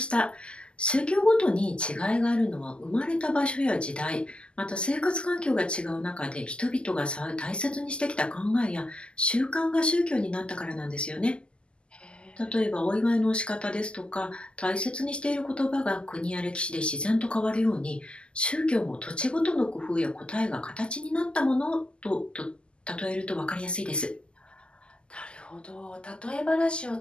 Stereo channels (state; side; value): late; right; 0.051 ms